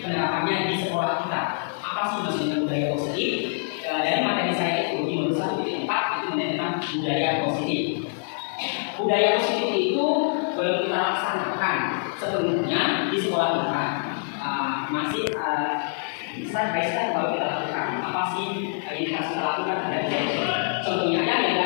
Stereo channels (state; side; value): silent; right; 62 dB below the other